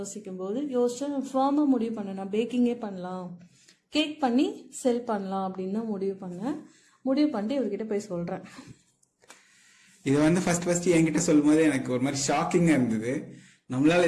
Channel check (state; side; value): identical; both; correlation 1.00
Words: போது யோசிச்சேன், ஃபார்மா முடிவு பண்ணேன், நான் பேக்கிங்கே பண்ணலாம், கேக் பண்ணி செல் பண்ணலாம் அப்படின்னு தான் முடிவு பண்ணிட்டு இவர்கிட்ட போய் சொல்றேன். இது வந்து ஃபர்ஸ்ட் என்கிட்ட சொல்லும் போது எனக்கு ஒரு மாதிரி ஷாக்கிங்கா இருந்தது.